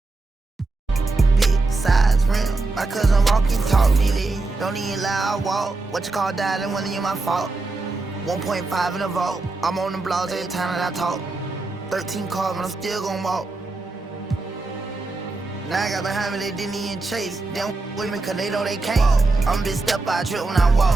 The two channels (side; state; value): left; quieter; 3.4 dB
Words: My cousin walking, talk me, don't even lie, I walk. What you call that and whether you my fault. 1.5 in the vault. I'm on the blogs every time that I talk. 13 calls, but I'm still gonna walk. Now I got behind me, they didn't even chase. They don't with me cause they know they can't. I'm big step by trip when I